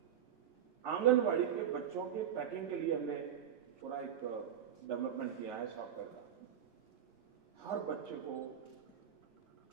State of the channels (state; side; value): quieter; left; 9.4 dB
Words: आंगनबाड़ी के बच्चों के पैकिंग के लिए हमने पूरा एक डेवलपमेंट किया है सॉफ्टवेयर का। हर बच्चे को